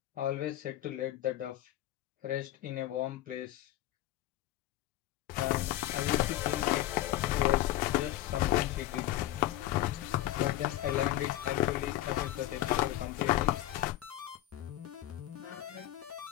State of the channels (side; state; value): right; quieter; 14.6 dB